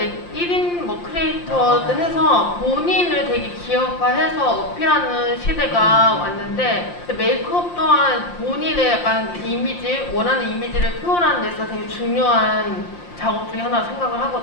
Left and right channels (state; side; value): late; right; 5.7 ms